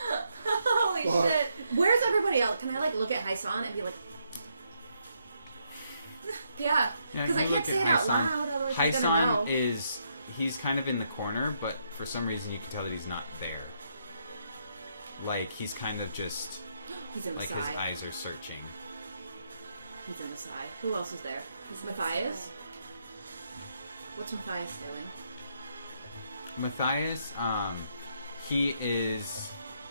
Holy Fuck. shit. Where's everybody else? Can I like look at Hyson and be like, Yeah. Yeah, because I you can't look say at it out Hyson. loud, otherwise she's gonna know. Hyson he's kind of in the corner, but for some reason you can tell that he's not there. Like he's kind of just He's in the like side. his eyes are searching. He's in the side. Who else is there? Matthias? What's Matthias doing? Matthias,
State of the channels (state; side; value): inverted; both; correlation -0.77